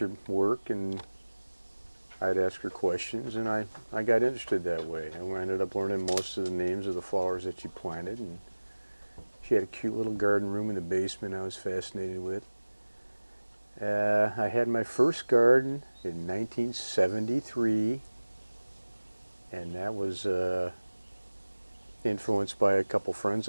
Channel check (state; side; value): inverted; both; correlation -1.00